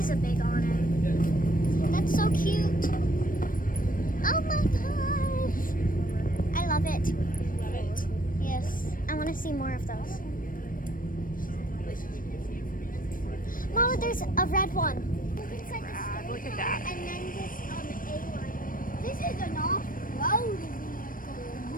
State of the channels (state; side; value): late; right; 0.40 ms